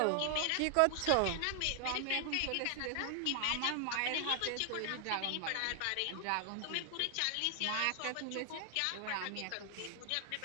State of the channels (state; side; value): different; both; correlation 0.00